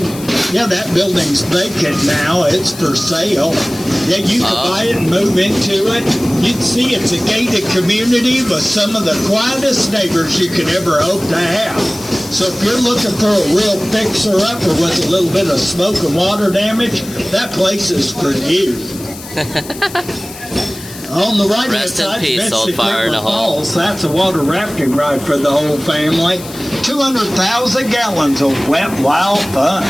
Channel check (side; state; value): left; noise; hiss, 15 dB below the sound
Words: Yeah, that building's vacant now. It's for sale. Yeah, you could buy it and move into it. You'd see it's a gated community with some of the quietest neighbors you could ever hope to have. So if you're looking for a real fixer-upper with a little bit of smoke and water damage, that place is for you. On the right-hand side, Falls. That's a water rafting ride for the whole family. 200,000 gallons of wet, wild fun.